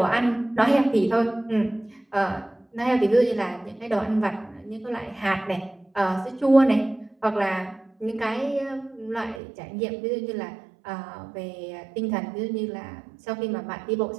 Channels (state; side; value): drops out; left; at 9.4 s